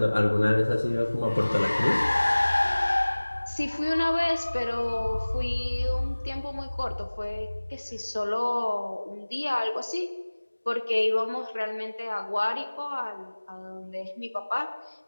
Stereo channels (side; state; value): both; inverted; correlation -1.00